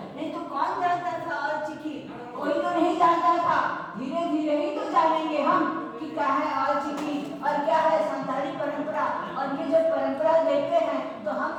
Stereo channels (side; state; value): both; identical; correlation 1.00